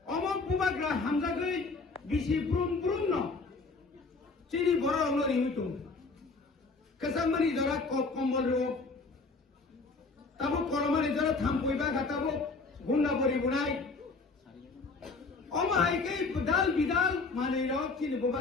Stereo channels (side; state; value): right; quieter; 3.9 dB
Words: अमक बुबाग्रा हामजागै बिसि ब्रुम ब्रुम न चिनि बरो लरि हुइतो कसामनि जरा कम्बल रो ताबो करमानि जरा थामपयबा गाताबो गुन्ना बरि बुनाय अम हाइकै बुदाल बिदाल मानै र चिनि